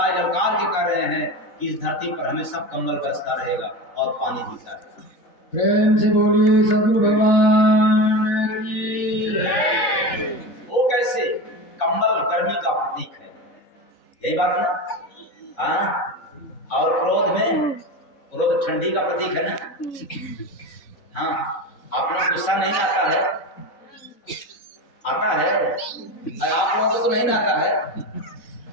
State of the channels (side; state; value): right; late; 4.1 ms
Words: ललकार के कर रहे हैं कि इस धरती पर हमेशा कंबल बरसता रहेगा और पानी भीगता रहेगा। प्रेम से बोलिए सद्गुरु भगवान की जय। वो कैसे? कंबल गर्मी का प्रतीक है, यही बात ना? हाँ, और क्रोध ठंडी का प्रतीक है ना? हाँ, आपने गुस्सा नहीं आता है? आता है? अरे आप लोगों को तो नहीं आता है,